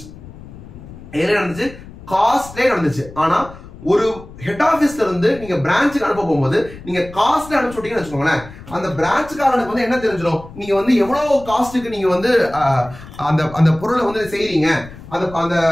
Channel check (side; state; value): left; noise; rumble, 17 dB below the sound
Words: எதுல நடந்துச்சு? காஸ்ட்லே நடந்துச்சு. ஆனா ஒரு ஹெட் ஆபீஸ்ல இருந்து நீங்க பிரான்ச்சுக்கு அனுப்ப போகும்போது நீங்க காஸ்ட்ல அனுப்பிச்சு விட்டீங்கன்னு வச்சுக்கோங்களேன், அந்த பிரான்ச்சுக்காரனுக்கு வந்து என்ன தெரிஞ்சிடும்? நீங்க வந்து எவ்வளவு காஸ்ட்டுக்கு நீங்க வந்து அந்த அந்த பொருளை வந்து செய்றீங்க, அந்த அந்த